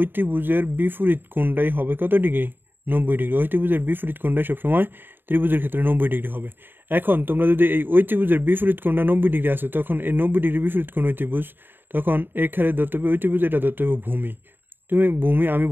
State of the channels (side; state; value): left; late; 0.096 ms